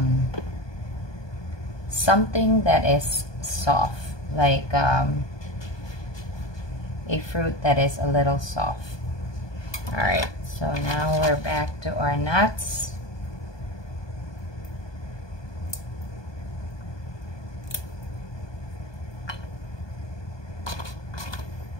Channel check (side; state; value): right; late; 1.2 ms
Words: Something that is soft, like a fruit that is a little soft. All right, so now we're back to our nuts.